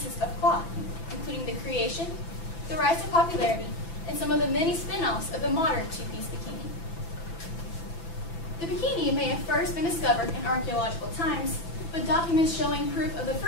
of cloth, including the creation, the rise to popularity, and some of the many spin-offs of the modern two-piece bikini. The bikini may have first been discovered in archaeological times, but documents showing proof of the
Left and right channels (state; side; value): late; right; 6.0 ms